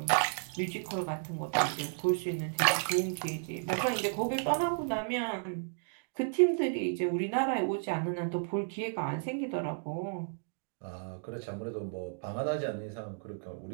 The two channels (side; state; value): left; silent; digital silence